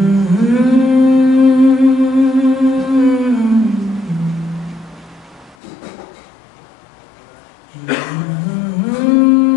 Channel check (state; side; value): drops out; right; at 5.6 s